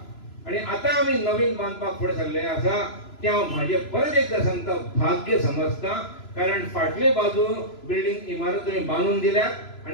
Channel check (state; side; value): late; right; 3.0 ms